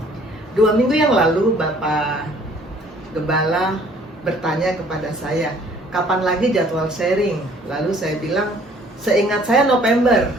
2 minggu yang lalu Bapak Gembala bertanya kepada saya, kapan lagi jadwal sharing? Lalu saya bilang, seingat saya November.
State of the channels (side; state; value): both; normal; correlation 0.57